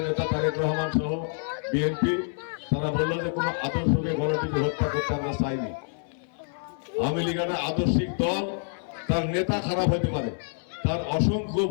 নেতা তারেক রহমান সহ বিএনপি তারা বললো যে কোনো আদর্শকে গণটিকে হত্যা করতে আমরা চাইনি। আওয়ামী লীগ একটা আদর্শিক দল, তার নেতা খারাপ হতে পারে, তার অসংখ্য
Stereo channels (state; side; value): silent; right; 60 dB below the other